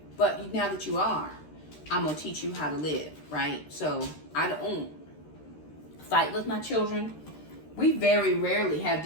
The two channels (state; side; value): late; right; 13 ms